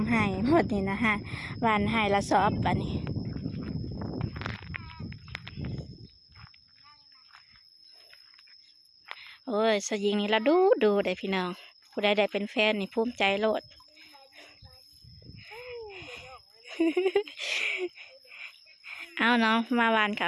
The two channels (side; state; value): both; identical; correlation 1.00